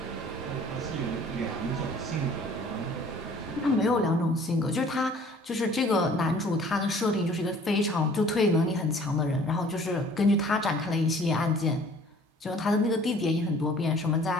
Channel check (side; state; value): both; normal; correlation 0.52